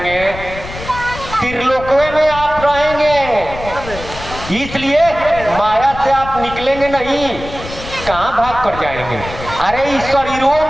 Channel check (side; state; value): left; noise; rumble, 12 dB below the sound